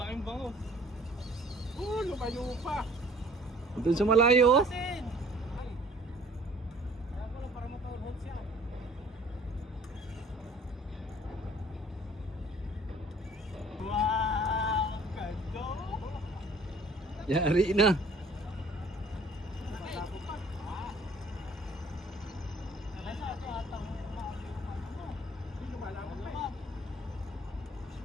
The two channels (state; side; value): normal; both; correlation 0.54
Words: bango. Lumayo pa. Doon sa malayo, oh. Kaya mo lang para makahulhod siya. Wow! Ganda! Yari na.